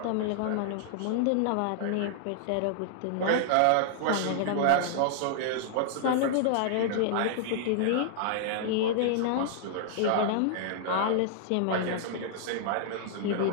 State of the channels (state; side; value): different; both; correlation -0.01